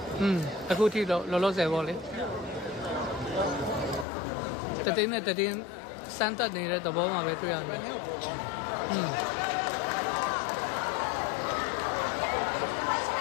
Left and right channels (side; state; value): right; drops out; at 4.0 s